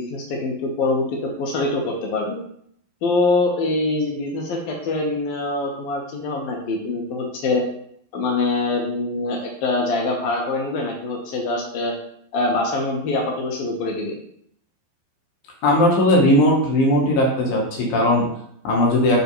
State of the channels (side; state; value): right; late; 12 ms